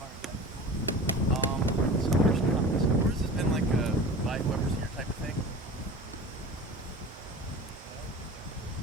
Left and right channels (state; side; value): normal; both; correlation 0.37